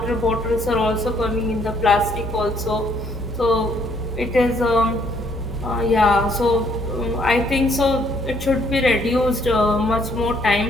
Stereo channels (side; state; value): both; normal; correlation 0.67